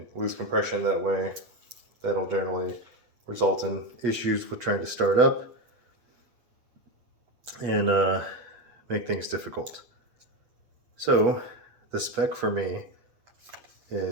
lose compression that way. That'll generally result in issues with trying to start up and make things difficult. So the spec for me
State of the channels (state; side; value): late; left; 8.1 ms